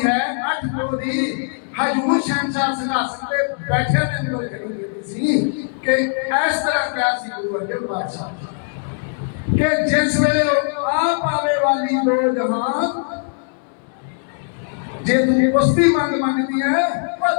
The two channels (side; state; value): right; silent; 66 dB below the other